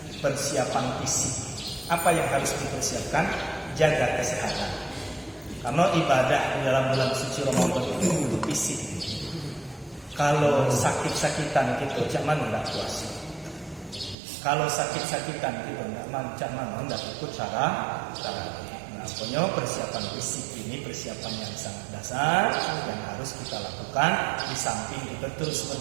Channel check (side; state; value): left; drops out; at 14.2 s